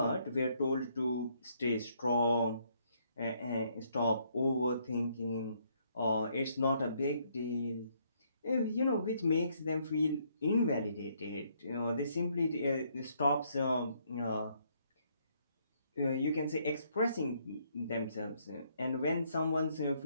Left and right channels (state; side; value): inverted; both; correlation -0.70